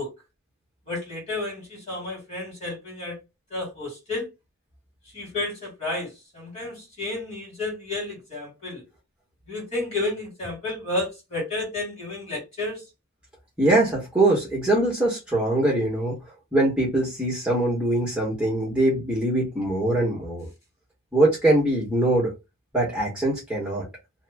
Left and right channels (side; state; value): both; normal; correlation 0.51